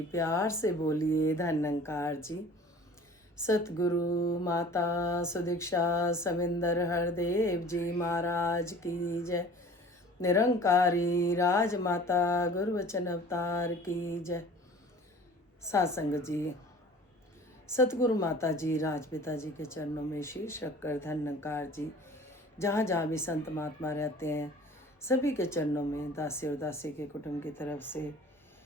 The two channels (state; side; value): normal; both; correlation 0.46